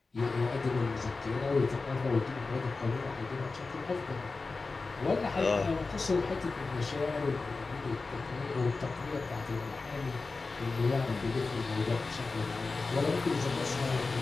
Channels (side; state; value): right; quieter; 3.9 dB